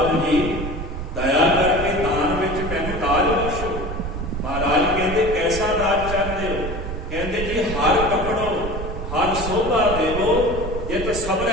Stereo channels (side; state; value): right; noise; rumble, 6 dB below the sound